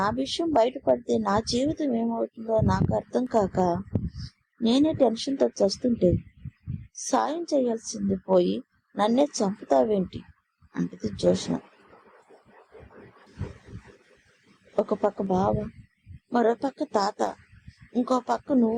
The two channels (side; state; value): both; identical; correlation 1.00